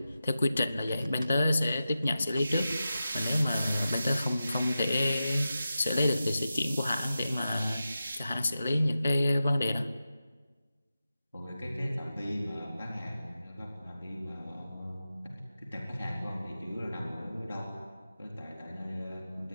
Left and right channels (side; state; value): both; inverted; correlation -0.92